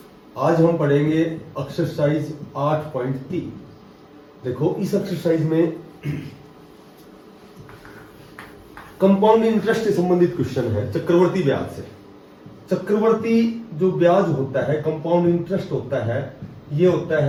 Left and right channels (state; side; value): identical; both; correlation 1.00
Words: आज हम पढ़ेंगे एक्सरसाइज 8.3। देखो, इस एक्सरसाइज में कंपाउंड इंटरेस्ट से संबंधित क्वेश्चन है, चक्रवर्ती ब्याज से। चक्रवर्ती जो ब्याज होता है, कंपाउंड इंटरेस्ट होता है, ये होता